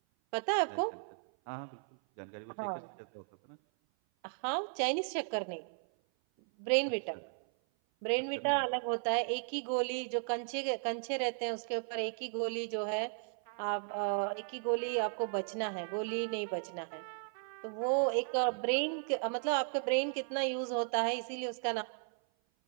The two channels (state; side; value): silent; left; 54 dB below the other